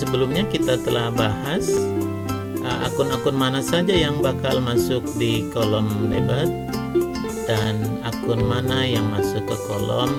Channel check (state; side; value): identical; both; correlation 1.00